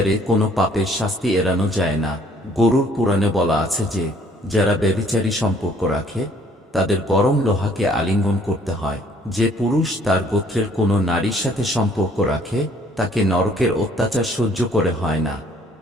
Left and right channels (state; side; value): normal; both; correlation 0.60